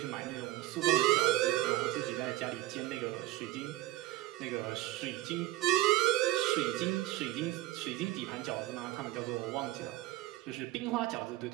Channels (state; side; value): quieter; left; 16.3 dB